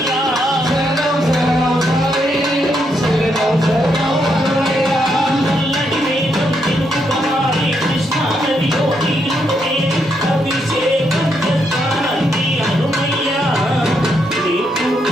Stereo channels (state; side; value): normal; both; correlation 0.78